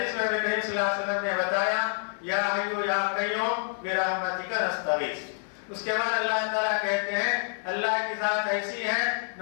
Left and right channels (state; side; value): silent; right; 56 dB below the other